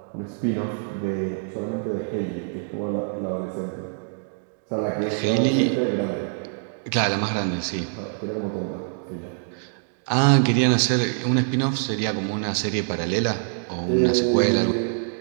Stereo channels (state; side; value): silent; left; digital silence